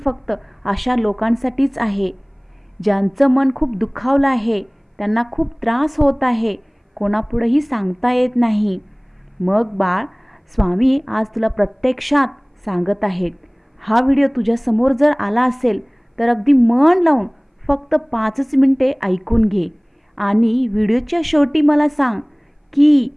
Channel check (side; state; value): both; identical; correlation 1.00